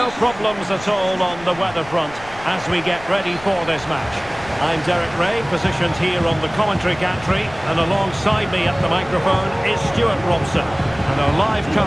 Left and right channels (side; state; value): left; noise; rumble, 19 dB below the sound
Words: problems at all on the weather front as we get ready for this match. I'm Derek Ray, positioned here on the commentary gantry, and alongside me at the microphone is Stuart Robson. And our live